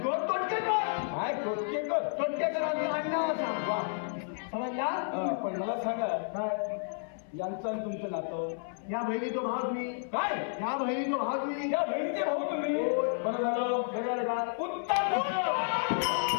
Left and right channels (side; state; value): right; silent; 57 dB below the other